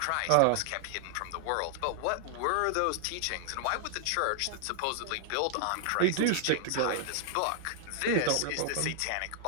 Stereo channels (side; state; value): both; different; correlation 0.00